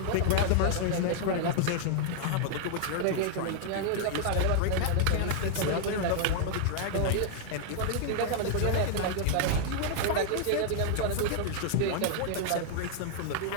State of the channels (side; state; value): both; different; correlation 0.00